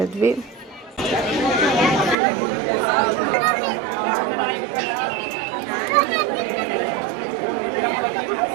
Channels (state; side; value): drops out; left; at 2.1 s